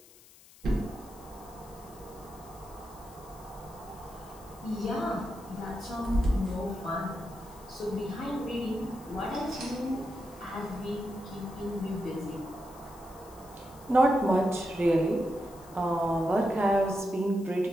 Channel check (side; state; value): left; noise; hiss, 23 dB below the sound